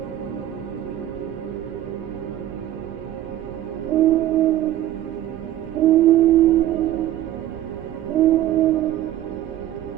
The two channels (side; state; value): left; quieter; 13.0 dB